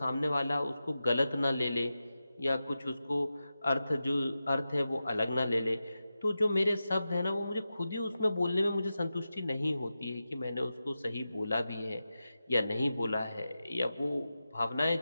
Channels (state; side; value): inverted; both; correlation -0.92